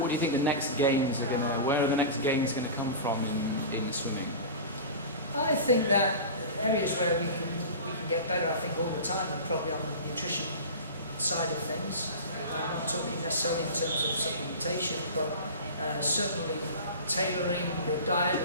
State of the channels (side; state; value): both; inverted; correlation -0.32